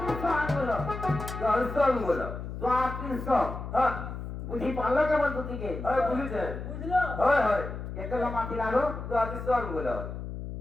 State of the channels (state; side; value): noise; left; hum, 7 dB below the sound